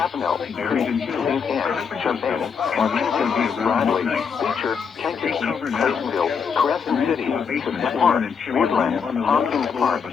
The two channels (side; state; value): right; quieter; 6.3 dB